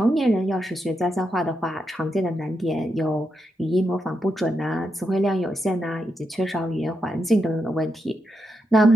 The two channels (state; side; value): normal; both; correlation 0.84